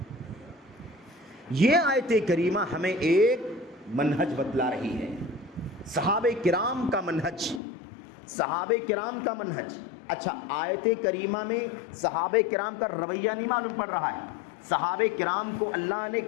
یہ آیت کریمہ ہمیں ایک منہج بتلا رہی ہے، صحابہ کرام کا منہج، صحابہ کرام کا منہج۔ اچھا، آیت کریمہ میں صحابہ کرام کا رویہ نہیں معلوم پڑ رہا ہے، صحابہ کرام کو اللہ نے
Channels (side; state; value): right; drops out; at 7.6 s